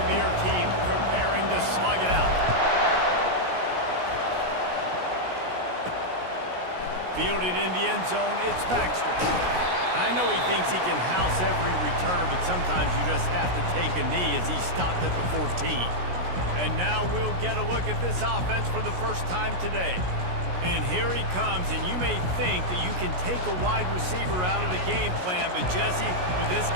teams preparing to slug it out. Fielded in the end zone, it's Baxter. I know he thinks he can house every return, but sometimes you just have to take a knee as he stopped at the 14. And now we'll get a look at this offense for the first time today. And here he comes, and you may think that you can take a wide receiver out of the game plan, but Jesse, with this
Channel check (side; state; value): left; late; 17 ms